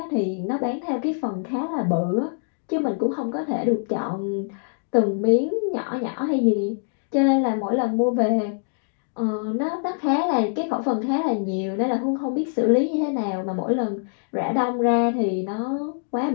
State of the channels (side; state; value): right; silent; digital silence